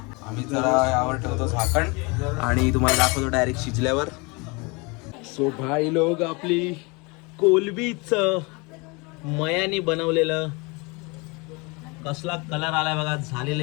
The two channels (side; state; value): right; quieter; 28.1 dB